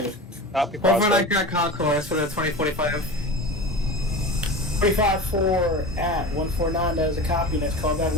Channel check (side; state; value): both; normal; correlation 0.30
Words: Copy, Overnight Prospect. Grand Concourse for the 2045. 25-4 at 149. That is a copy. Next callback